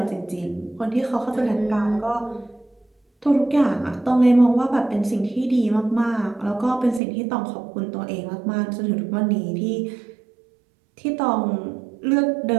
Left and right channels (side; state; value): left; drops out; at 7.0 s